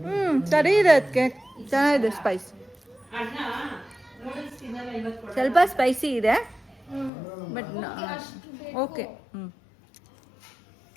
ಸರಿ ಇದೆ. ಅದಕ್ಕೆ ಚೆನ್ನಾಗಿದೆ. ಸ್ಪೈಸ್ ಅಣ್ಣ ನೂಡಲ್ಸ್ ತಿನ್ನಲ್ಲ ಇವತ್ತು. ಸ್ವಲ್ಪ ಸ್ಪೈಸಿ ಇದೆ ಬಟ್ ಓಕೆ.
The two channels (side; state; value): right; drops out; at 7.1 s